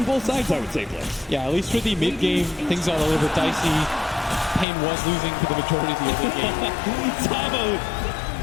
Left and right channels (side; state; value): right; drops out; at 4.7 s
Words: both sides, I would say, Blitz. Yeah, at least for the mid game, things got a little bit dicey. Pain was losing for the majority of the early game. Tavo